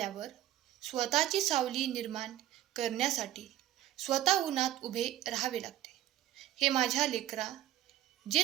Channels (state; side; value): quieter; left; 13.0 dB